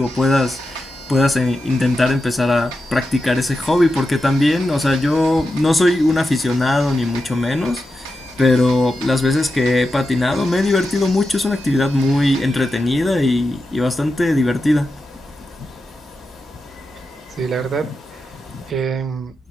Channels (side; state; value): both; normal; correlation 0.90